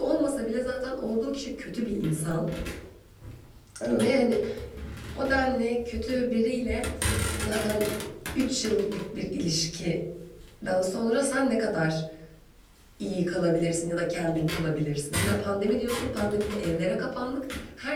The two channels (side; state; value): both; identical; correlation 1.00